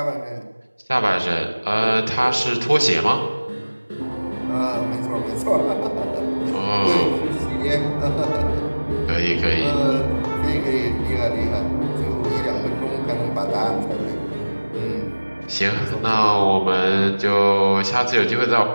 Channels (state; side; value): inverted; both; correlation -1.00